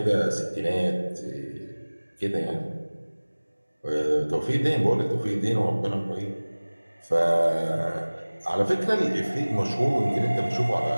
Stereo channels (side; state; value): both; inverted; correlation -1.00